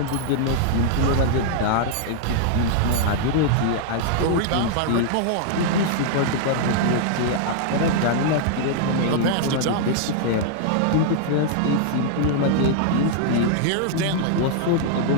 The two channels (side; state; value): both; different; correlation -0.01